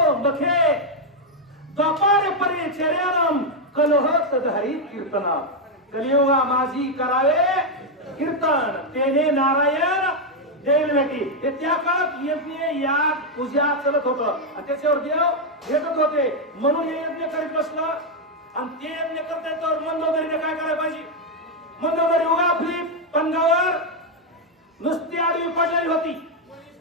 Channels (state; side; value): normal; both; correlation 0.01